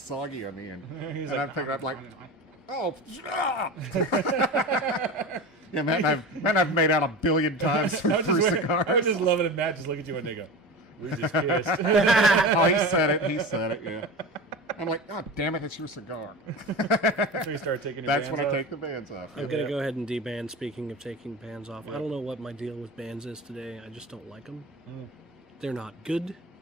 on the end. He's and like, I'd pick it up like, oh, yeah, Matt and I've made out 1 billion times through cigars. I would just love it if Matt just look at you and they go, we just kissed. Oh, he said it, yeah. I'm like, oh, damn it, it's your cigar. So you start taking your That's bands when I off? take the bands off. I'm going to go ahead and deban. Speaking of taking bands off, I don't know what my deal with bands is today. I just don't like them. They're not good.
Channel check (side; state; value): both; normal; correlation 0.29